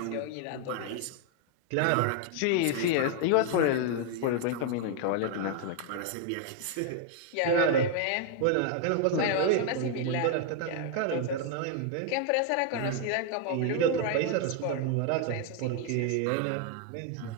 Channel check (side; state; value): both; different; correlation 0.00